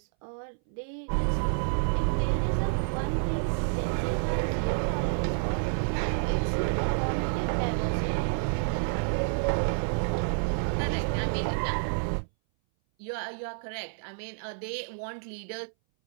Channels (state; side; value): silent; left; 58 dB below the other